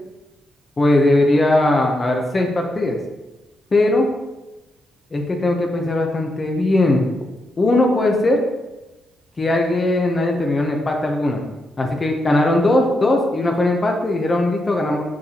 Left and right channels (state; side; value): normal; both; correlation 0.84